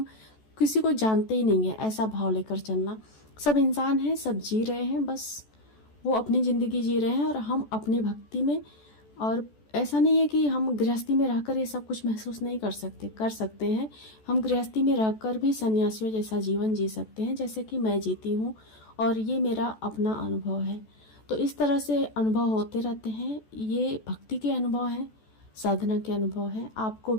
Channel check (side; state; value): right; late; 14 ms